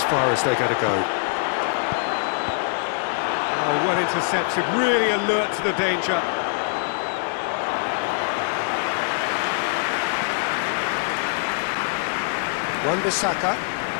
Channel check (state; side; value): silent; right; digital silence